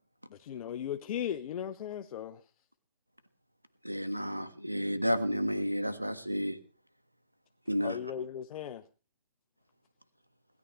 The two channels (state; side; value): inverted; both; correlation -0.82